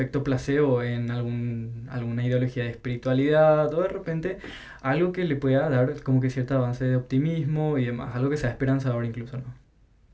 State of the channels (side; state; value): both; identical; correlation 1.00